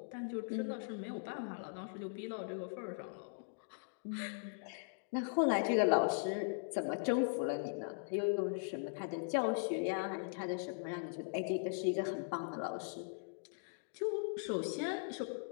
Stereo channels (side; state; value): right; silent; digital silence